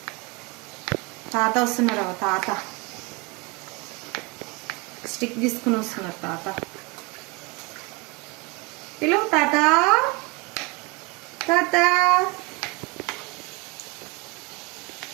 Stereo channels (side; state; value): left; quieter; 27.1 dB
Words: తాత వస్తున్నారు, తాత స్టిక్ తీసుకుని వస్తున్నారు. తాత పిలువు, తాత తాత.